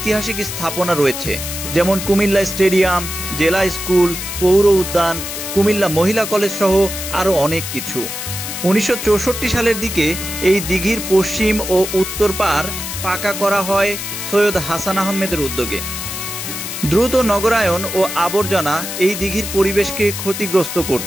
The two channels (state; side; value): noise; left; hiss, 6 dB below the sound